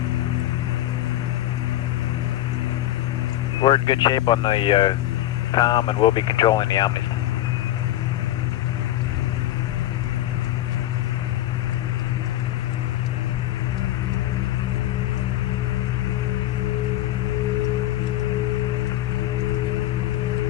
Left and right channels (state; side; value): quieter; right; 14.4 dB